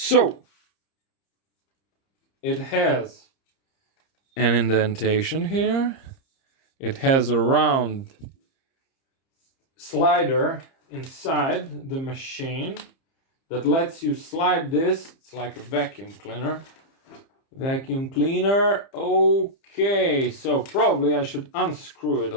it has an indentation here. It has a round slider inside the machine that lets you slide this. It's like a vacuum cleaner. Vacuum cleaner. Okay, so probably I should unscrew it a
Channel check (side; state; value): right; late; 30 ms